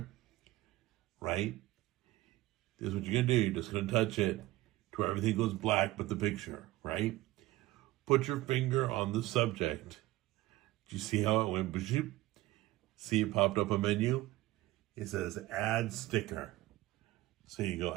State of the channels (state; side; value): quieter; left; 17.6 dB